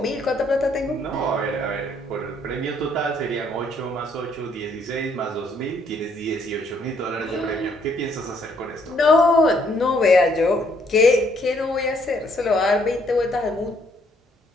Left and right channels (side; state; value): both; normal; correlation 0.68